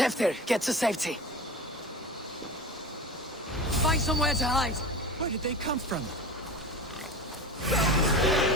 get to safety. Find somewhere to hide. Where did they come from?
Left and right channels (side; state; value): both; normal; correlation 0.31